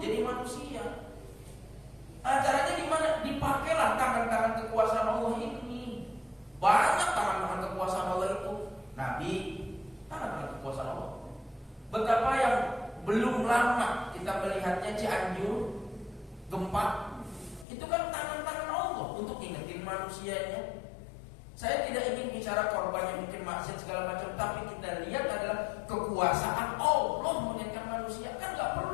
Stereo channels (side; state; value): right; drops out; at 17.7 s